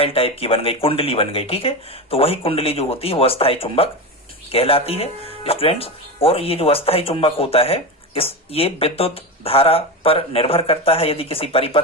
टाइप की बन गई, कुंडली बन गई, ठीक है। तो वही कुंडली जो होती है वो अस्थायी चुंबक कहलाती है स्टूडेंट्स। और ये जो अस्थायी चुंबक होता है ये विद्युत धारा पर निर्भर करता है। यदि किसी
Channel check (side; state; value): both; normal; correlation 0.20